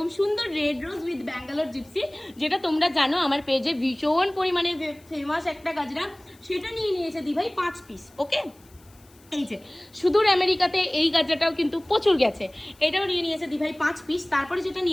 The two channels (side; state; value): left; noise; hiss, 28 dB below the sound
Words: সুন্দর red rose with Bangalore gypsy, যেটা তোমরা জানো আমার পেজে ভীষণ পরিমাণে ফেমাস একটা গাজরা। সেটা নিয়ে নিয়েছে দিভাই 5 পিস। ওকে, এই যে সুদূর আমেরিকাতে এই গাজরাটাও কিন্তু প্রচুর গেছে, এটাও নিয়ে নিয়েছে দিভাই 5 পিস। তারপরে যেটা